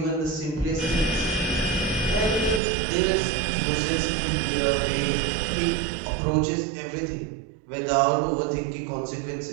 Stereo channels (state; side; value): drops out; left; at 2.6 s